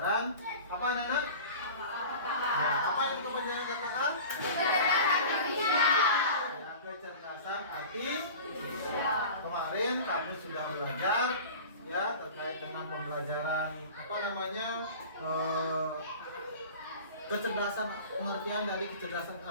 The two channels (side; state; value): both; inverted; correlation -0.38